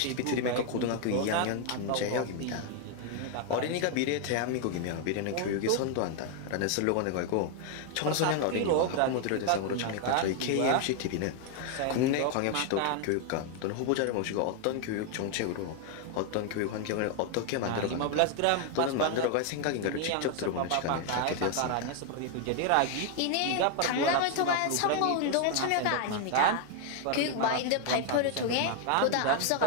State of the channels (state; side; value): different; both; correlation 0.00